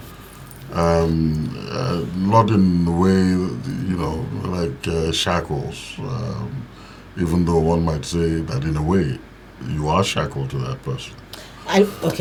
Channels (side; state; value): both; identical; correlation 1.00